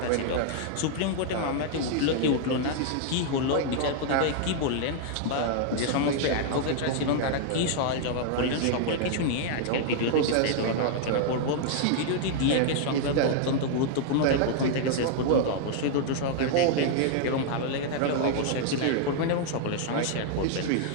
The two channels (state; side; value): different; both; correlation -0.01